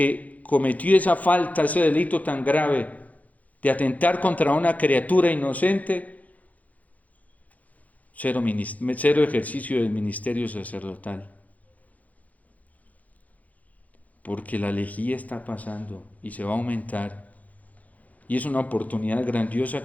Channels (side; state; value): right; late; 0.075 ms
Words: cometió esa falta, ese delito tan grave de atentar contra una criatura inocente, cero ejercicio del ministerio sacerdotal. Porque la lejía está pasando y se va a aumentar. Y es una oportunidad grandiosa